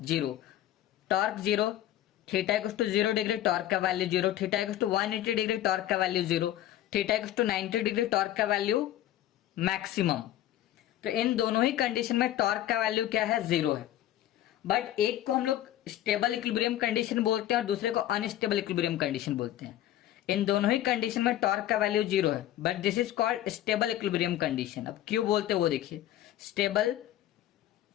0। Torque 0, theta equals to 0 degree, torque का value 0, theta equals to 180 degree, torque का value 0, theta equals to 90 degree, torque का वैल्यू मैक्सिमम। तो इन दोनों ही कंडीशन में टॉर्क का वैल्यू क्या है 0 है। बट एक को हम लोग स्टेबल इक्विलिब्रियम कंडीशन बोलते हैं और दूसरे को अनस्टेबल इक्विलिब्रियम कंडीशन बोलते हैं। इन दोनों ही कंडीशन में टॉर्क का वैल्यू 0 है, but this is called stable equilibrium condition. अब क्यों बोलते हैं वो देखिए, स्टेबल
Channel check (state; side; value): quieter; right; 12.8 dB